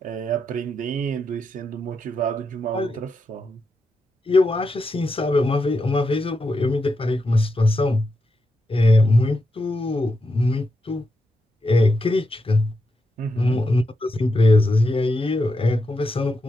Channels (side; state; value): both; normal; correlation 0.85